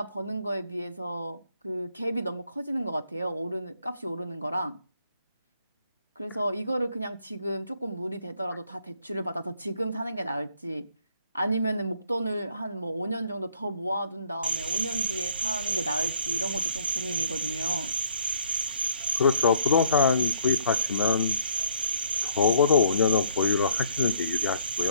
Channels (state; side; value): inverted; both; correlation -0.63